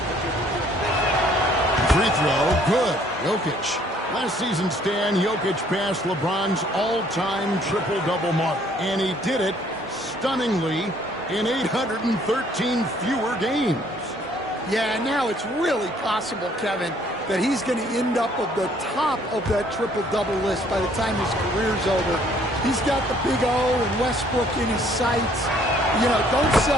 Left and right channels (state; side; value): normal; both; correlation 0.62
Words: Free throw, good. Jokic. Last season, Stan, Jokic passed LeBron's all-time triple-double mark, and he did it stunningly in 813 fewer games. Yeah, now it's really possible, Kevin, that he's going to end up at the top of that triple-double list by the time his career's over. He's got the big O and Westbrook in his sights. You know, don't